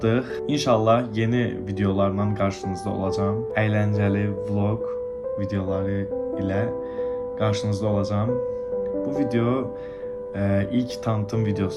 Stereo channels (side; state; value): both; identical; correlation 1.00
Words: İnşallah yeni videolarla qarşınızda olacağam. Əyləncəli vlog videoları ilə qarşınızda olacağam. Bu video ilk tanıtım